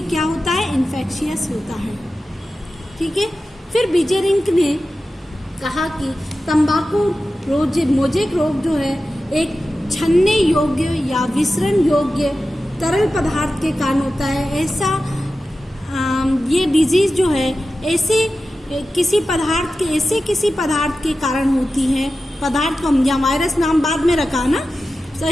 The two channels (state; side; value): normal; both; correlation 0.93